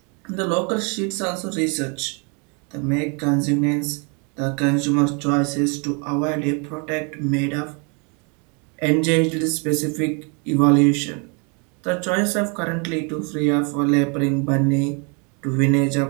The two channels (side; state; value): left; quieter; 34.8 dB